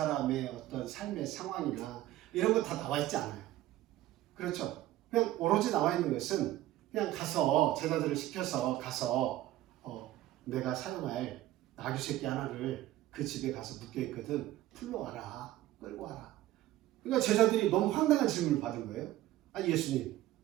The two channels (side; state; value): left; quieter; 14.9 dB